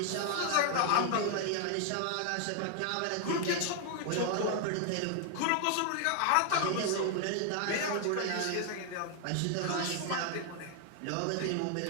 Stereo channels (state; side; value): different; both; correlation 0.00